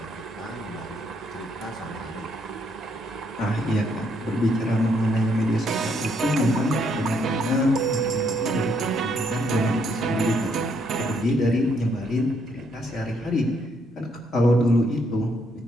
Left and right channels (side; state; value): both; normal; correlation 0.72